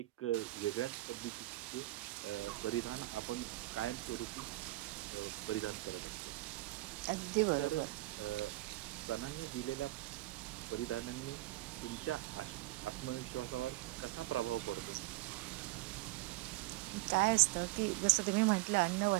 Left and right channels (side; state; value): left; quieter; 19.4 dB